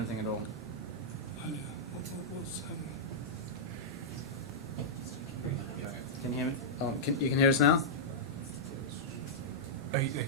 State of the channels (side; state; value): both; normal; correlation -0.09